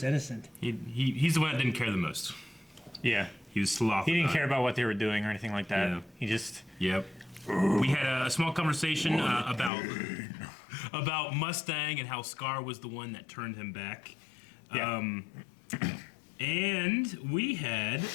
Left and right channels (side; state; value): right; drops out; at 9.7 s